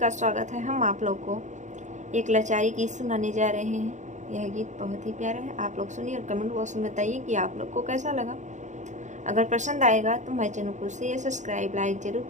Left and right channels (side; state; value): left; late; 0.35 ms